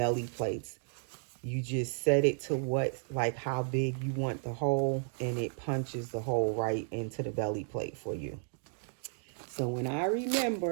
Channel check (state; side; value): silent; left; 56 dB below the other